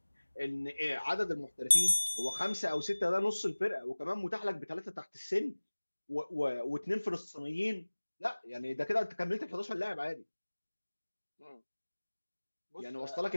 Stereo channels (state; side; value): inverted; both; correlation -1.00